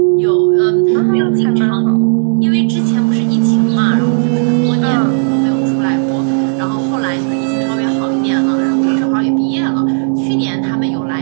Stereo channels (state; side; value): silent; left; digital silence